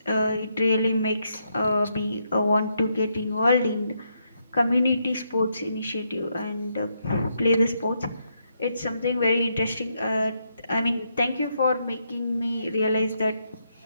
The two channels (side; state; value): both; inverted; correlation -0.79